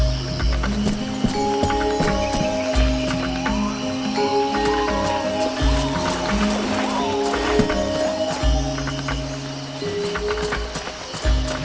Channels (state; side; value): identical; both; correlation 1.00